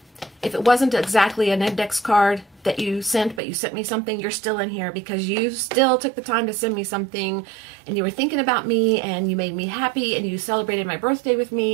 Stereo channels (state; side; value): drops out; left; at 3.4 s